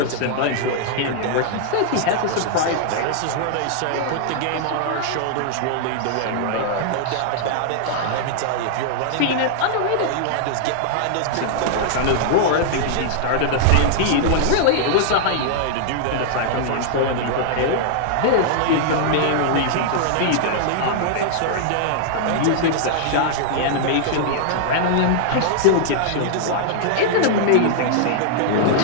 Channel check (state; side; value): different; both; correlation -0.01